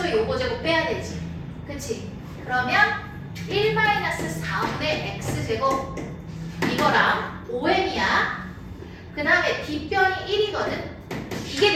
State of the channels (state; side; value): identical; both; correlation 1.00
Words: 요거 제곱 빼야 되지. 그치? 그러면 1-4분의 x제곱 이거랑 OM이야. 그 다음에 빗변이 1이거든. 이게